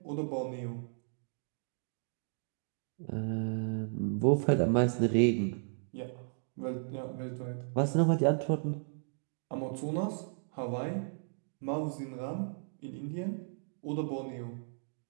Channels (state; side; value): silent; left; digital silence